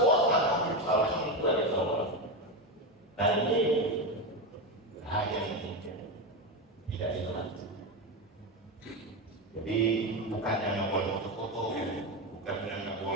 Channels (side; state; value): both; normal; correlation 0.14